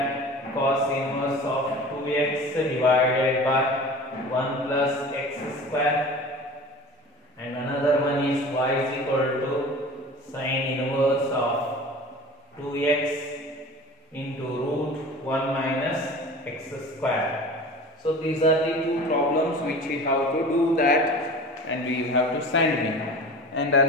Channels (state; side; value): normal; both; correlation 0.38